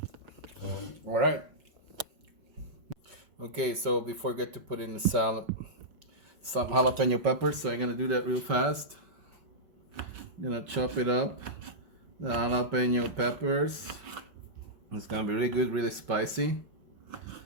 All right. Okay, so before I get to put in the salad, some jalapeno peppers, so I'm gonna do that real fast. I'm gonna chop it up, the jalapeno peppers. It's gonna be really good, really spicy.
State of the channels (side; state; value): left; late; 5.3 ms